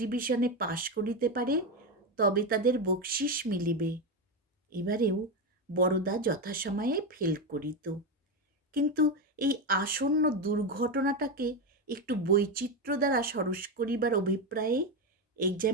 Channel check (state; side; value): normal; both; correlation 0.12